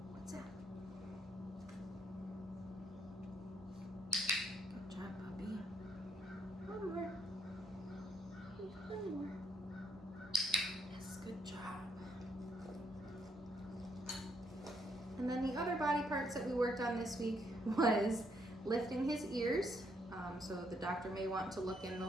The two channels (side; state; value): both; normal; correlation 0.72